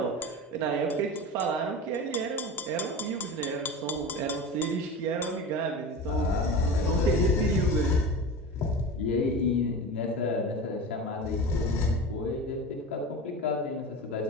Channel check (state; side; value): normal; both; correlation 0.29